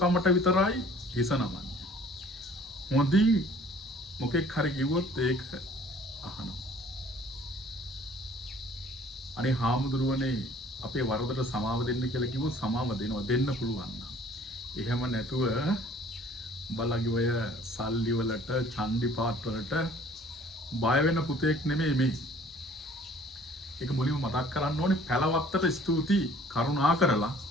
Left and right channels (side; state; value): both; normal; correlation 0.53